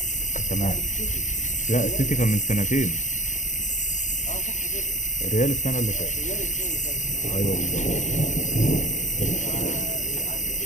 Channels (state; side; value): late; right; 0.36 ms